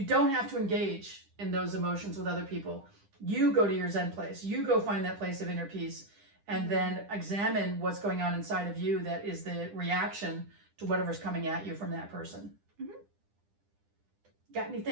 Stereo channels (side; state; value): left; late; 10 ms